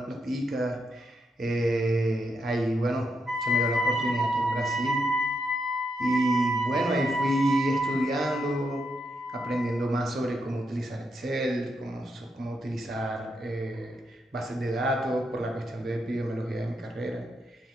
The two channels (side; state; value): both; normal; correlation 0.81